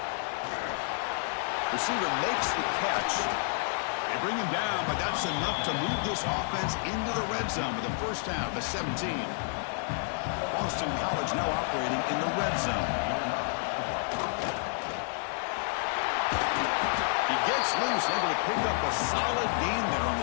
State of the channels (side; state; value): right; silent; 58 dB below the other